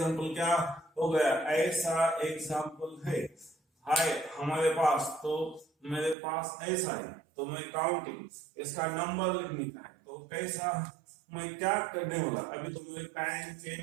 क्या हो गया, ऐसा एग्जांपल है हमारे पास, तो मेरे पास ऐसा है, तो मैं काउंटिंग इसका नंबर लिखने का है, तो कैसा मैं क्या करने वाला, अभी तो मुझे पैरेंट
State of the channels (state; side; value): drops out; left; at 6.2 s